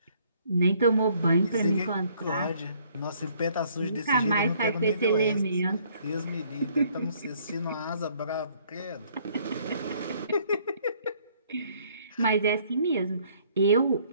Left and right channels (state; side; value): inverted; both; correlation -0.63